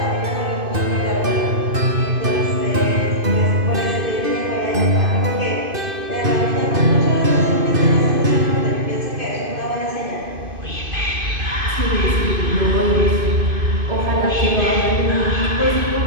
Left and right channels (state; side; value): late; left; 2.5 ms